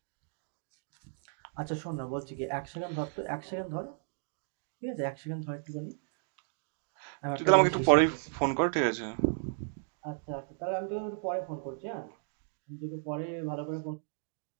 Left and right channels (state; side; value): silent; left; digital silence